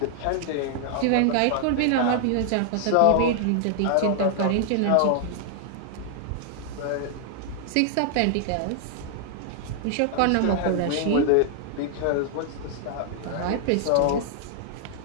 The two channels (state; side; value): different; both; correlation 0.00